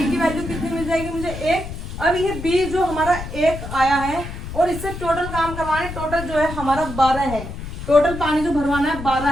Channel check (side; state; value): left; noise; rumble, 9 dB below the sound